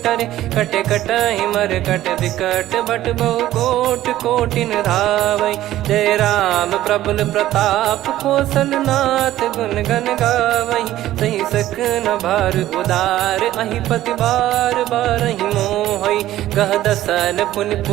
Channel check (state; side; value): quieter; left; 14.1 dB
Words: टरे, कटे कटहि मर कट विकट बट बहु कोट कोटिन धावै। जय राम प्रबल प्रताप कौशलनाथ गुण गण गावै। सही सकन भार उदार अहि पति बार बारहि मोहै। गह दसन पुन